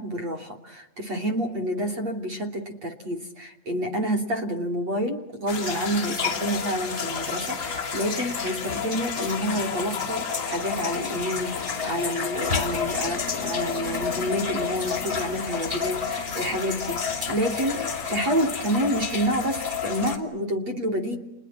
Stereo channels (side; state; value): left; late; 7.7 ms